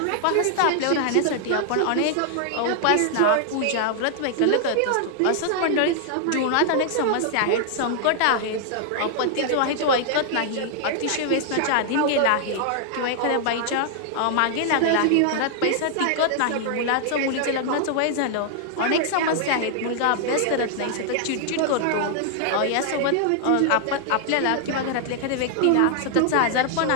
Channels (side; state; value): both; different; correlation 0.00